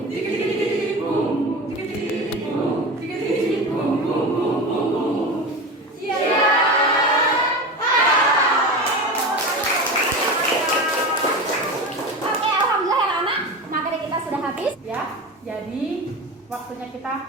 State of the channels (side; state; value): both; normal; correlation 0.27